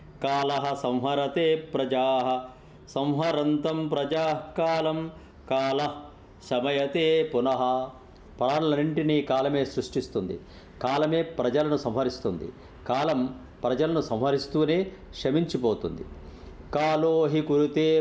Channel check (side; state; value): both; identical; correlation 1.00